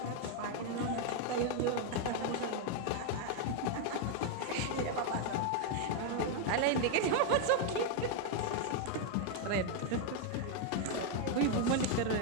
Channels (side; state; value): both; different; correlation 0.01